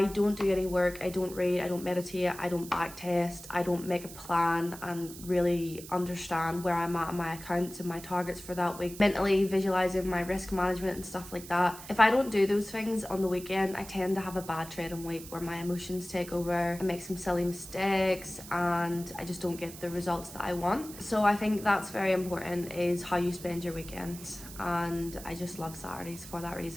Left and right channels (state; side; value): noise; right; hiss, 14 dB below the sound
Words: don't do any work, I don't read, I don't meditate, I don't backtest, I don't make a plan and really understand where I'm at in my accounts and my targets for that week, mentally visualizing my risk management and stuff like that. If I don't do those things on the weekend, I tend to have a bad trading week where my emotions take over, I make some silly mistakes and I just don't get the results that I want. So I think that's very important, is how you spend your weekends, and I just love Saturdays for that